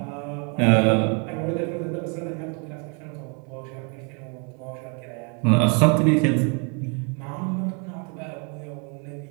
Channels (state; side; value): quieter; left; 36.7 dB